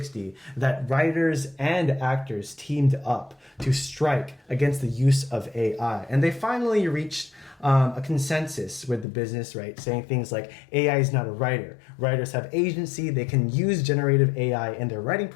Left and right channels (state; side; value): drops out; right; at 9.1 s